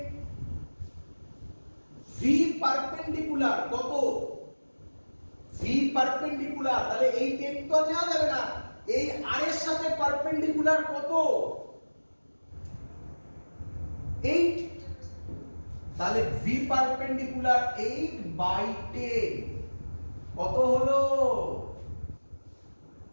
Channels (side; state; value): both; inverted; correlation -1.00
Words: ভি পারপেন্ডিকুলার কত? ভি পারপেন্ডিকুলার, তাহলে এই 10 তো নেওয়া যাবে না, এই আর এর সাথে পারপেন্ডিকুলার কত? 8। তাহলে ভি পারপেন্ডিকুলার 8/10 কত হলো?